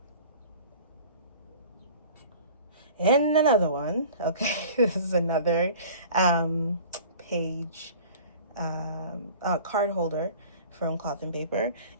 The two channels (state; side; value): inverted; both; correlation -0.44